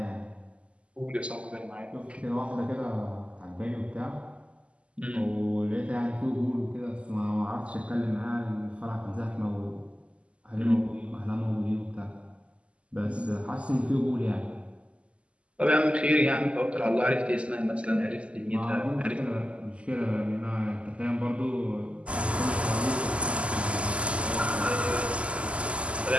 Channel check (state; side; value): late; left; 0.057 ms